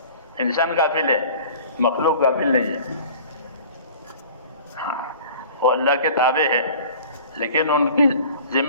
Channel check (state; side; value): inverted; both; correlation -0.45